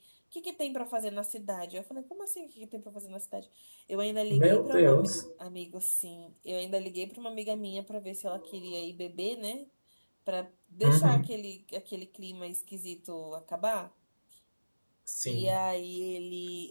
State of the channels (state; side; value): inverted; both; correlation -1.00